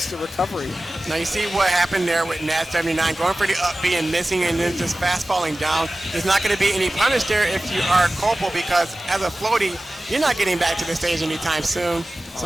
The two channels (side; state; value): both; normal; correlation 0.96